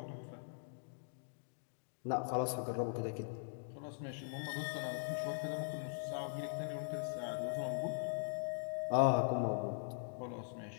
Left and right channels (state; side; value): silent; right; digital silence